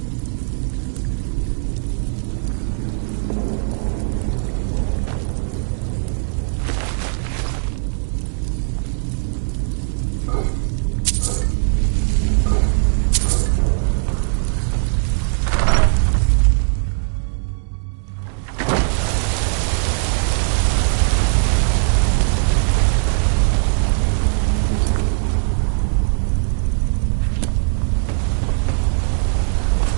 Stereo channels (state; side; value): silent; left; digital silence